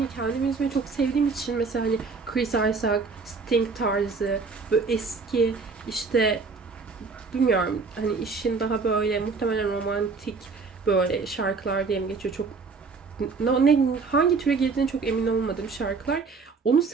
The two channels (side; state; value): left; quieter; 4.6 dB